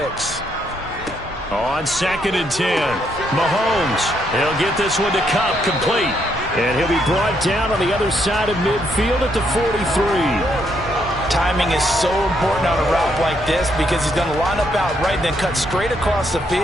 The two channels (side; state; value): both; normal; correlation 0.74